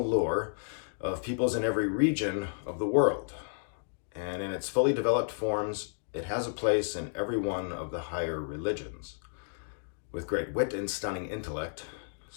lore of peoples in every region of the world. And in its fully developed forms, it has a place in every one of the higher religions. With great wit and stunning intellect,"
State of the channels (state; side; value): silent; right; digital silence